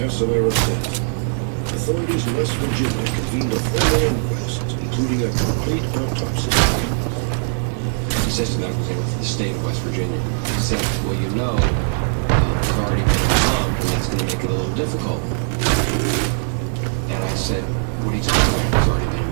death, authorities in West Virginia convened a formal inquest, including a complete autopsy. He says to medical examiner for the state of West Virginia. He said, well, you know, he's already been involved, and that's going to make it a little difficult. And I said, what are you talking about? He's already been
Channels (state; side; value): silent; left; 65 dB below the other